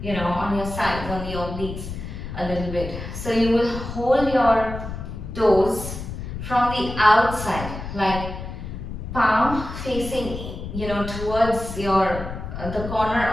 your, on your sides, on the obliques a little bit. So you will hold your toes from the outside, like palm facing, towards your the corner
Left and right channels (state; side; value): noise; left; rumble, 8 dB below the sound